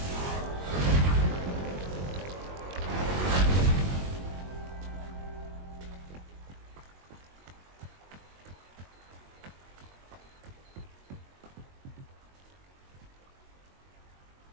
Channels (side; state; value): left; late; 22 ms